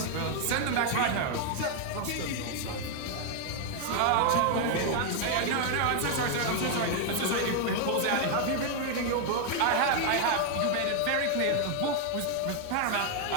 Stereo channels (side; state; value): both; different; correlation 0.00